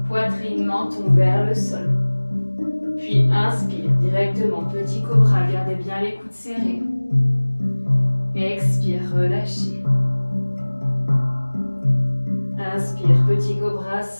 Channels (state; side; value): inverted; both; correlation -1.00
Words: Poitrine, menton vers le sol. Puis inspire directement. Petit cobra. Gardez bien les coudes serrés. Expire, relâchez. Inspire, petit cobra